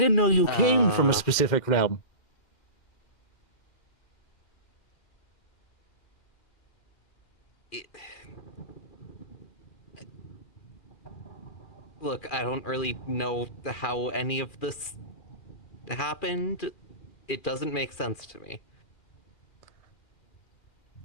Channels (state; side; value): late; right; 2.4 ms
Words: know you came from a specific realm. Look, I don't really know how any of this happened. It doesn't make sense to me.